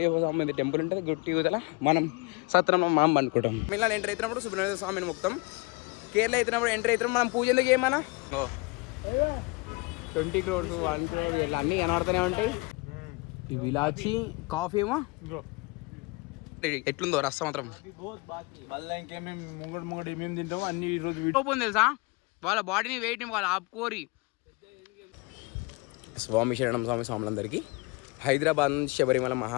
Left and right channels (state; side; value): quieter; right; 27.2 dB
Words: స్వామి టెంపుల్ ఉంటుంది గుట్టి ఊతల. మనం సత్రంలో మనం అనుకుంటాం. మిమ్మల్ని ఎంటర్ అవుతున్నప్పుడు సుబ్రహ్మణ్య స్వామిని మొత్తం. కేరళ అవుతున్నప్పుడు ఎంటర్ అవుతున్నాం. మనం పూజలు చేయమన్నా 20 crores 1 crore ఇట్లా అన్నీ కనబడుతూనే ఉంటాయి. ఈ విలాచి కాఫీ ఏమో ఎట్లుందో రస్తా మాత్రం తెలుసా. వాళ్ళ బాడీని వెయిట్ వాళ్ళ ఆపుకోరి. స్వామి శరణం స్వామి స్వాములందరికీ. హైదరాబాద్ నుంచి శబరిమల